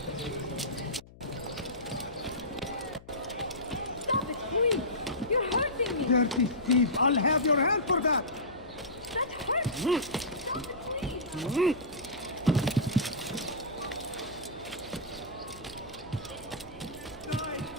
Stop it, please! You're hurting me! Dirty thief! I'll have your hand for that! That hurts me! Stop it, please!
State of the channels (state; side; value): noise; left; hum, 21 dB below the sound